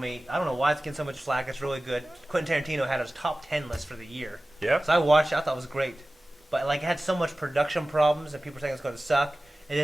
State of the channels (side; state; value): both; normal; correlation 0.97